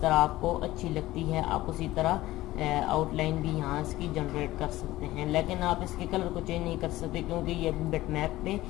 तरह आपको अच्छी लगती है। आप उसी तरह आउटलाइन भी यहाँ इसकी जनरेट कर सकते हैं, लेकिन आप इसके कलर को चेंज नहीं कर सकते क्योंकि ये बिटमैप पे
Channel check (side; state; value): right; quieter; 16.8 dB